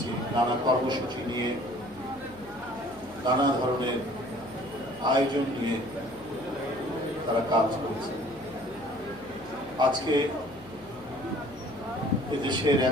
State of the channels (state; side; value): noise; left; hum, 22 dB below the sound